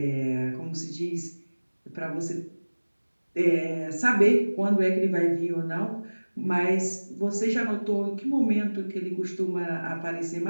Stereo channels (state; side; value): inverted; both; correlation -1.00